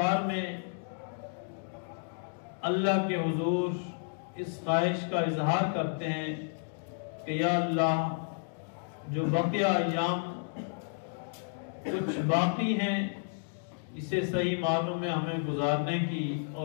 میں اللہ کے حضور اس خواہش کا اظہار کرتے ہیں کہ یا اللہ، جو بقیہ ایام کچھ باقی ہیں اسے صحیح معنوں میں ہمیں گزارنے کی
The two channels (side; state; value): right; silent; digital silence